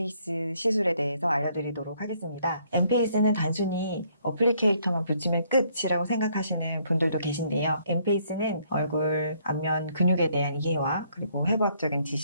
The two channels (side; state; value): both; inverted; correlation -0.68